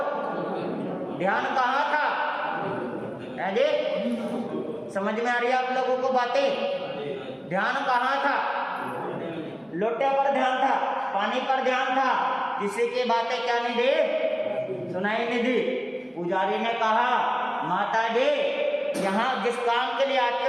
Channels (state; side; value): identical; both; correlation 1.00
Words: ध्यान कहाँ था? जी समझ में आ रही है आप लोगों को बातें? ध्यान कहाँ था? लोटे पर ध्यान था, पानी पर ध्यान था, किसी की बातें क्या नहीं दी, सुनाई नहीं दी। पुजारी ने कहा माता जी यहाँ जिस काम के लिए आते